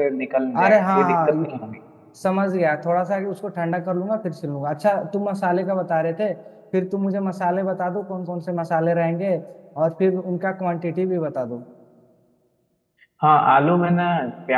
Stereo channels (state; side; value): identical; both; correlation 1.00